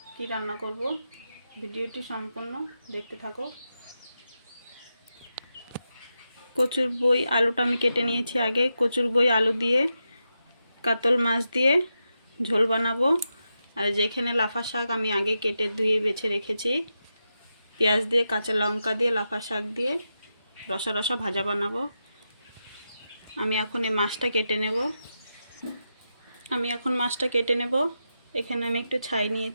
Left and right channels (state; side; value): inverted; both; correlation -0.88